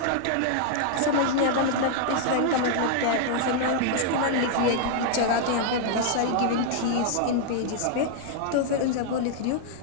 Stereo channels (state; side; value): different; both; correlation 0.00